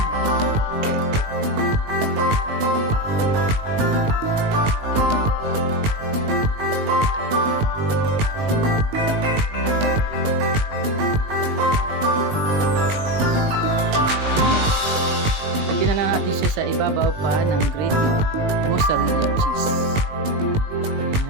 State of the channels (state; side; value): late; left; 19 ms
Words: Sa ibabaw pa ng grated mozzarella cheese.